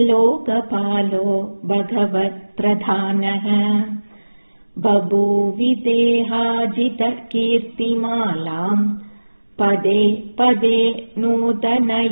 भगवत्प्रधानः बभूविदेहाजितकीर्तिमालाम् पदे पदे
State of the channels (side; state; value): both; inverted; correlation -1.00